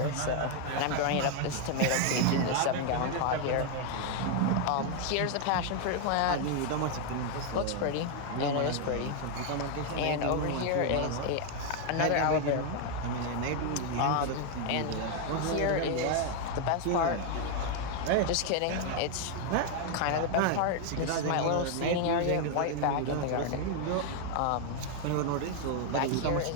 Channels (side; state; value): both; different; correlation 0.01